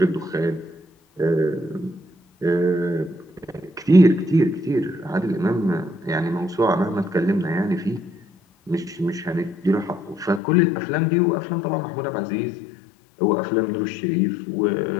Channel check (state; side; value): drops out; right; at 10.4 s